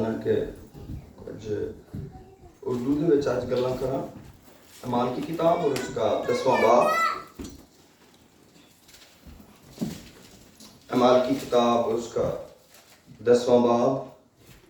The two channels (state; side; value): identical; both; correlation 1.00